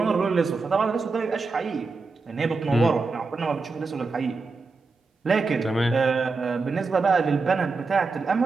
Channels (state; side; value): quieter; left; 4.1 dB